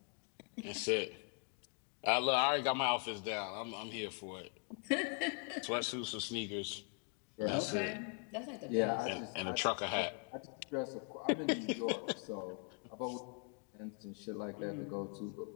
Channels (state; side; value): quieter; right; 38.5 dB